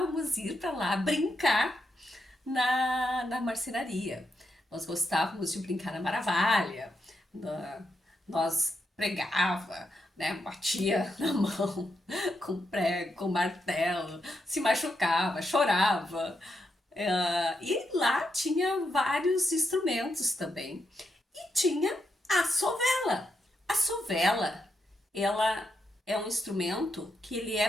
ir para lá brincar na marcenaria. Nós gostávamos de brincar na Maravalha, nós pregava, né, batia na mão com prego, com martelo, se machucava, chorava. E lá tinha vários instrumentos também. E tinha a sovela. A sovela, ela é um instrumento que ele é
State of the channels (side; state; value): both; normal; correlation 0.83